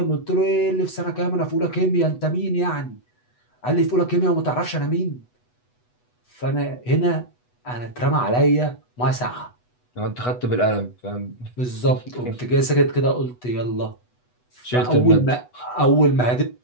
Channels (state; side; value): late; right; 8.1 ms